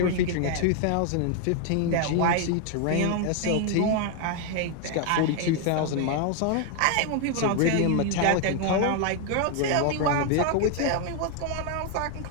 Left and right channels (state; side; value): different; both; correlation 0.00